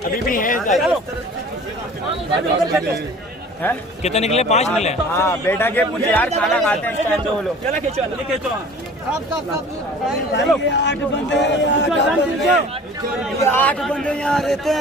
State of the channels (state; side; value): normal; both; correlation 0.45